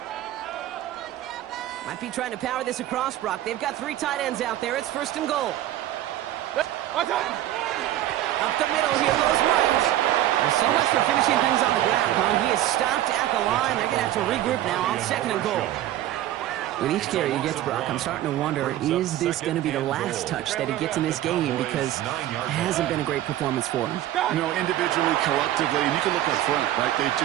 Might be trying to power this across, Brock. They've got 3 tight ends out there. It's 1st and goal. Up the middle, here goes Miles. Well, so much for finishing things on the ground, huh? He is stopped at the line. They're going to have to regroup now on 2nd and goal. With each carry he gets, Brock, I'm starting to wonder, is this going to be the last touch that he gets in this game? Because it hasn't been a great performance for him. You know, individually, collectively, and you can look up front, right? They've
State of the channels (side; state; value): left; quieter; 13.4 dB